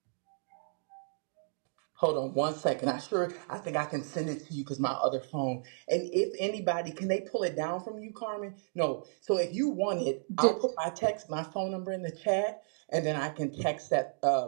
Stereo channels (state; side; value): silent; left; digital silence